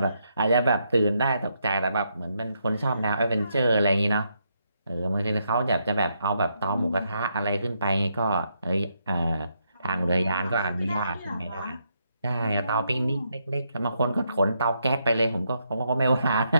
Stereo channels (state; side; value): inverted; both; correlation -0.78